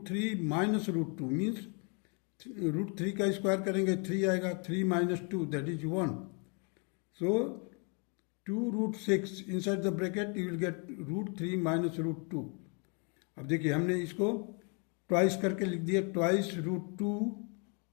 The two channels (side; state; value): right; quieter; 35.7 dB